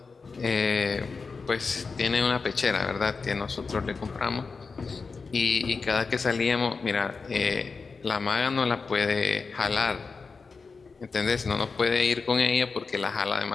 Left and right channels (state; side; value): quieter; right; 4.6 dB